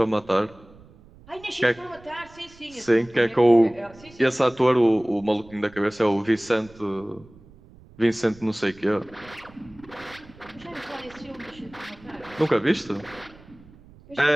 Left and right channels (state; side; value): noise; right; rumble, 24 dB below the sound